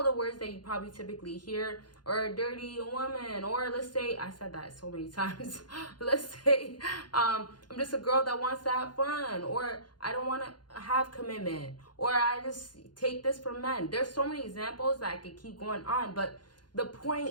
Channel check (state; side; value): late; right; 0.70 ms